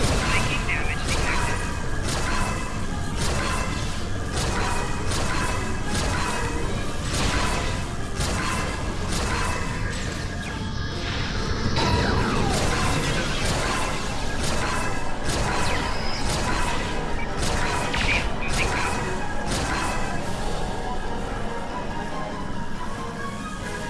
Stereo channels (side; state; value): both; identical; correlation 1.00